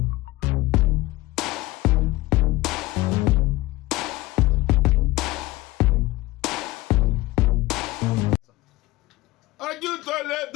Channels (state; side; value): quieter; right; 19.3 dB